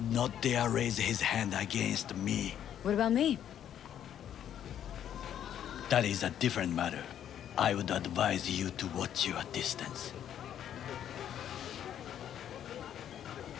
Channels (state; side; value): quieter; right; 10.1 dB